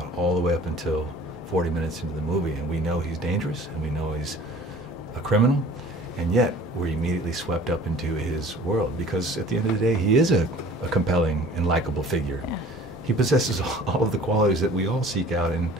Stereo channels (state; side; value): normal; both; correlation 0.48